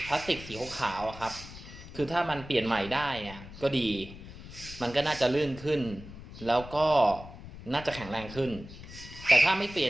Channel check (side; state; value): left; noise; rumble, 14 dB below the sound